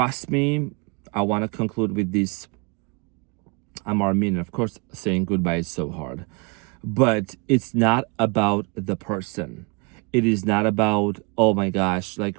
me, I want to conclude with this. I'm Armin. Of course, saying goodbye is so hard. But it's not about the person. It is not about, oh my gosh,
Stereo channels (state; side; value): quieter; left; 30.5 dB